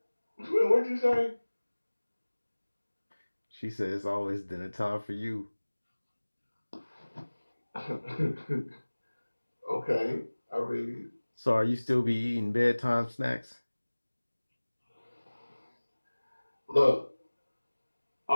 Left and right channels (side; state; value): both; inverted; correlation -1.00